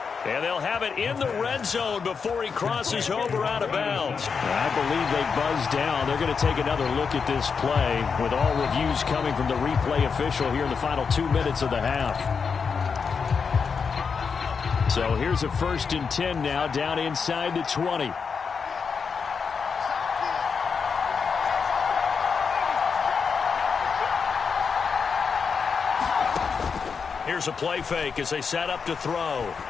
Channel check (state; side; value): quieter; right; 5.8 dB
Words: And they'll have it in the red zone before he crosses over out of bounds. I believe they buzzed down. They're going to take another look at this play with all reviews coming from the replay official here in the final 2 minutes of the half. So here's a 1st and 10 now down inside the 20. Here's a play fake as they set up to throw.